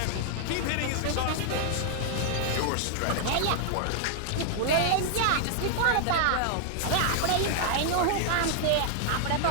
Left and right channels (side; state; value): both; different; correlation -0.01